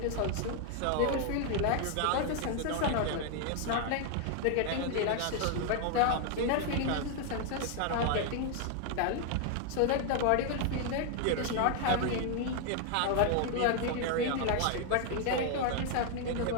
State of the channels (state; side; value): different; both; correlation 0.00